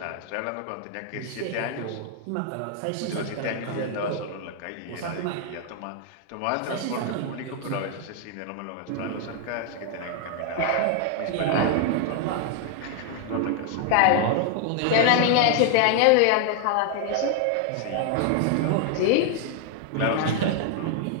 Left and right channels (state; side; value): different; both; correlation 0.00